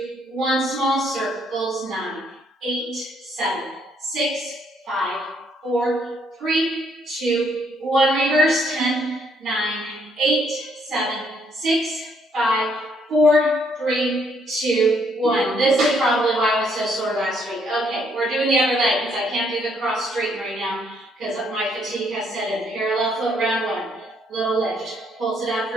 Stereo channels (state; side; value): normal; both; correlation 0.70